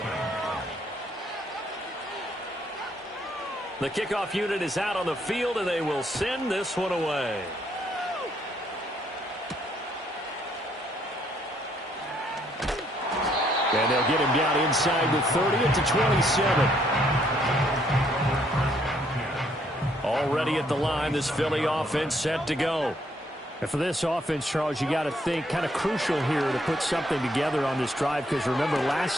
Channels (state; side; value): normal; both; correlation 0.69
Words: The kickoff unit is out on the field, and they will send this one away. And they'll get him down inside the 30 at the 27. Already at the line, this Philly offense set to go. And for this offense, Charles, you got to think kind of crucial here to put something together on this drive, because remember